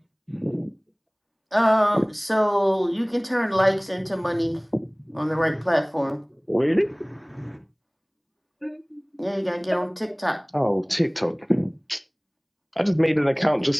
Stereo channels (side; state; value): both; identical; correlation 1.00